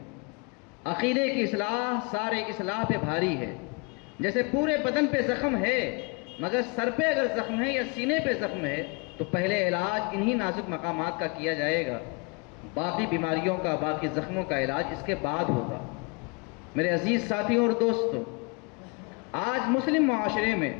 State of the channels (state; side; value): quieter; right; 32.6 dB